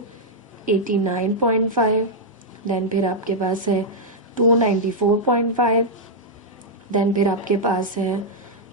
देन फिर आपके पास है 294.5, देन फिर आपके पास है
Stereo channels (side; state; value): both; normal; correlation -0.05